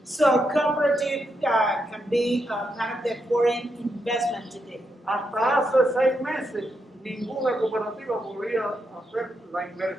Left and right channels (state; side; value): normal; both; correlation 0.82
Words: So cooperative can be kind of the foreign investment today. Hasta hace 6 meses ninguna cooperativa podría hacer la